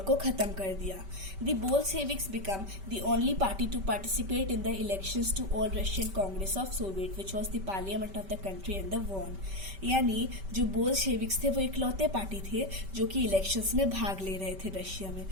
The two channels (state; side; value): late; left; 5.2 ms